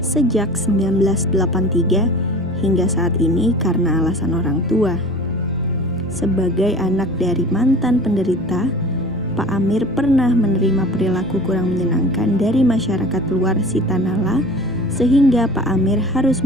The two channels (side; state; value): both; normal; correlation 0.40